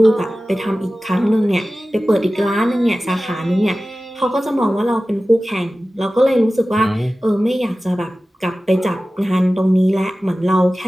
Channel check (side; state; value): both; normal; correlation 0.96